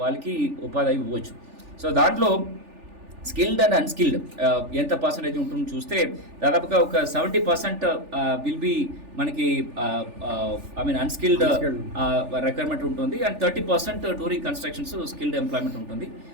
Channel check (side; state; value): left; late; 3.4 ms